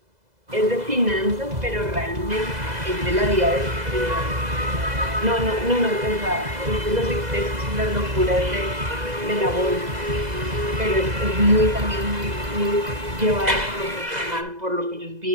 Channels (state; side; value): late; left; 2.0 ms